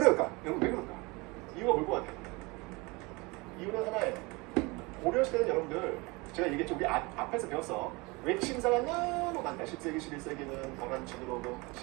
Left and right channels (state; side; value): quieter; left; 25.6 dB